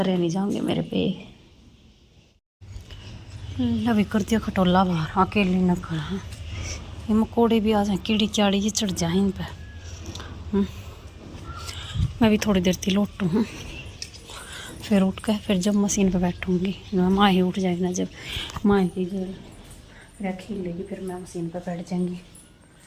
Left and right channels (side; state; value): both; identical; correlation 1.00